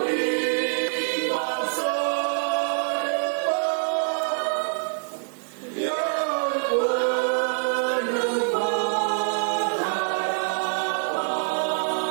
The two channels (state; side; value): silent; left; 62 dB below the other